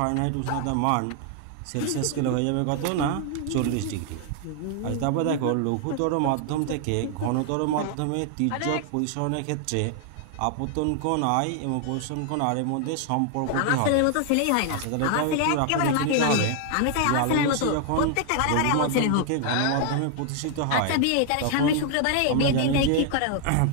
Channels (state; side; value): different; both; correlation 0.00